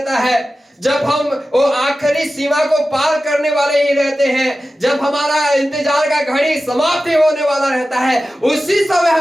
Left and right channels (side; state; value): both; normal; correlation 0.94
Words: है, जब हम वो आखिरी सीमा को पार करने वाले ही रहते हैं, जब हमारा इंतजार का घड़ी समाप्ति होने वाला रहता है, उसी समय